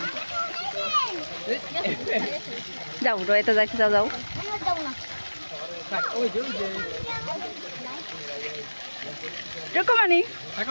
যাও রয়েতে যাইতে যাও যাও। রকমানি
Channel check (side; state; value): both; inverted; correlation -1.00